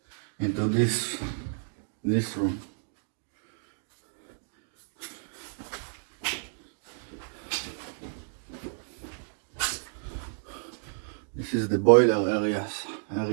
into this room. This is the boiler area.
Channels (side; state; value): left; silent; digital silence